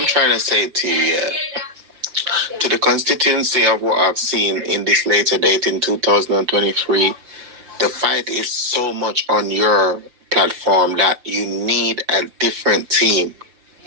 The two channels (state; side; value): late; left; 5.8 ms